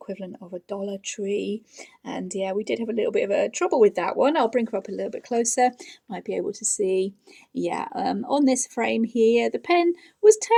of a Dollar Tree. And yeah, we did have a little bit of a trouble with that one. I'll bring her up a little bit closer, might be able to see. Yeah, on this frame here, the pen was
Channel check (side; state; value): both; identical; correlation 1.00